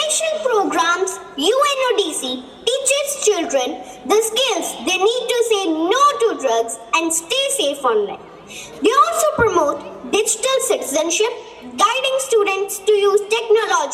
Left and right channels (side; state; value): both; identical; correlation 1.00